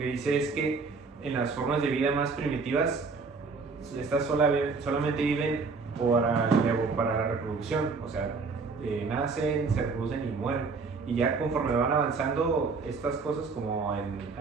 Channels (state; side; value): quieter; left; 4.5 dB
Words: dice es que en las formas de vida más primitivas, estas solamente viven para la reproducción. O sea, nacen, se reproducen y mueren. Y ya conforme van avanzando estas cosas, como en